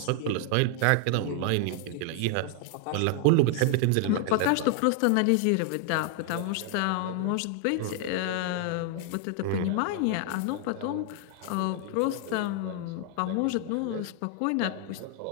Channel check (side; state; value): both; different; correlation 0.00